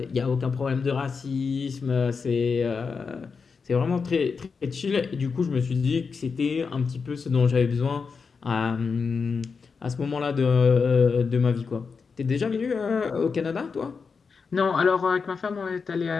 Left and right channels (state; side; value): quieter; right; 5.2 dB